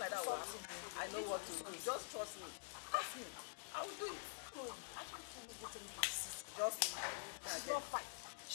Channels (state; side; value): silent; right; digital silence